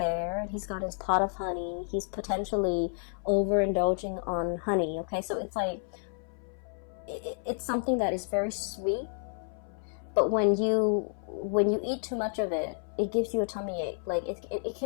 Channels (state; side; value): silent; right; 57 dB below the other